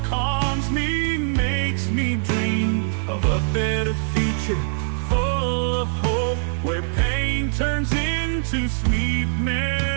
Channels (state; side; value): silent; left; digital silence